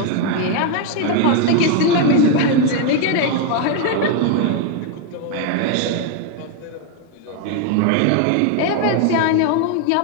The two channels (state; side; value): different; both; correlation 0.01